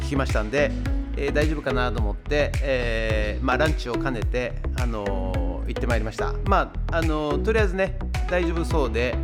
きましたんで、大丈夫かなと思って、ランチを兼ねて、行ってまいりました。とりあえずね大丈夫そうで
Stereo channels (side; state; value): both; identical; correlation 1.00